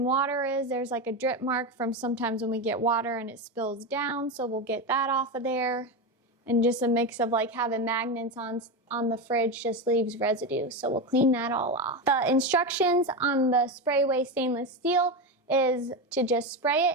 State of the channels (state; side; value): normal; both; correlation 0.15